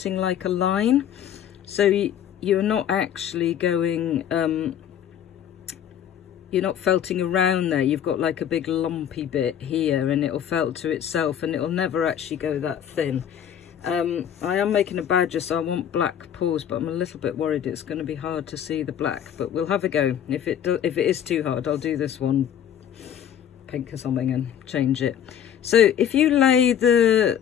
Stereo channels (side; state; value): right; quieter; 9.6 dB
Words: like a line. So you're not actually going, you're not felting around there. You've got like a big lumpy bit here, and it'll felt to itself, and it'll never actually go that thin. I am making a badger, so I want black paws, but I'm a little bit worried it's going to be hard to see the black, but we'll have a go. If it is too hard, I'll do this one pink or something and change it. So if you lay the